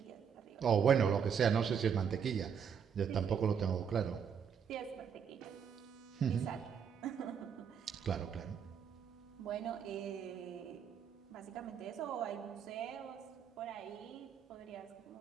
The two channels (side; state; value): left; quieter; 7.4 dB